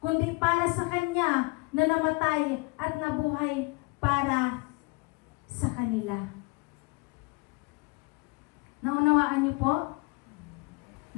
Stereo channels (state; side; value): quieter; right; 28.1 dB